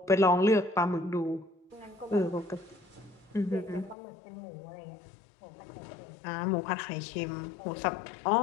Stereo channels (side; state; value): right; drops out; at 4.0 s